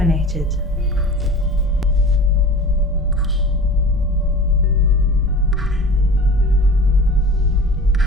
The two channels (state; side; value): normal; both; correlation 0.37